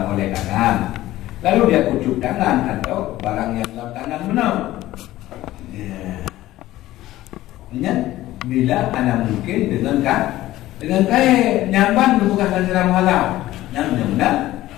oleh tangan, lalu dia kucuk tangan atau barang yang dalam tangan benar. Ingat bila anda mungkin dengan kaya nyamban bukan secara muhalah nyamban.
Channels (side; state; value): right; quieter; 15.6 dB